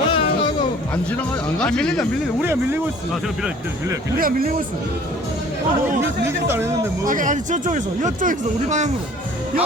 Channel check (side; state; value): both; normal; correlation 0.51